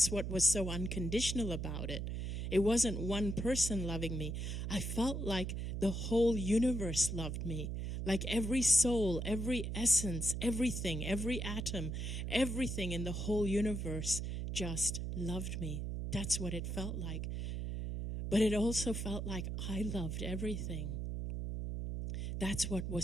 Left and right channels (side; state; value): right; noise; hum, 3 dB below the sound